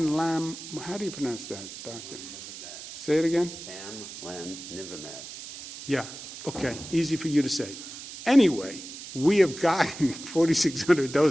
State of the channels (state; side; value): noise; right; hiss, 12 dB below the sound